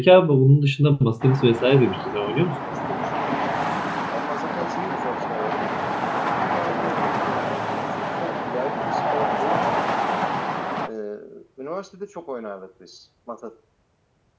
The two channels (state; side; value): identical; both; correlation 1.00